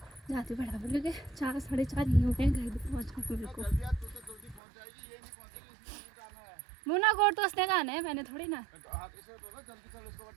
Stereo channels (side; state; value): left; drops out; at 4.6 s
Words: जाती बराबर, क्योंकि 4 साढ़े 4 ही हो गए घर भी पहुँचने मेरे को। मुना कोट तो उसने कहना है, मैंने थोड़ी ना।